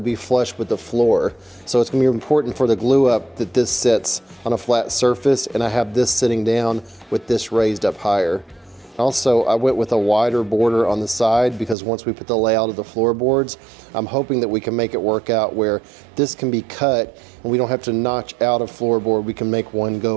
be flush with the floor. So it's going to be important for the glue up that this sits on a flat surface, and I have this sitting down with this raised up higher. Also, I went with a wider border on the side because once we put the layout of the floorboards, I'm hoping that we can make it work out where this can be cut and we don't have to notch out a floorboard. We can make one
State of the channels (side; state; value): left; drops out; at 11.8 s